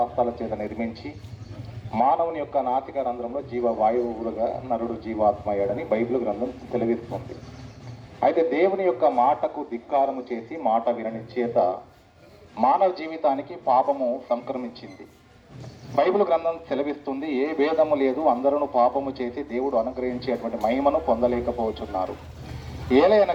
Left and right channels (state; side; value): identical; both; correlation 1.00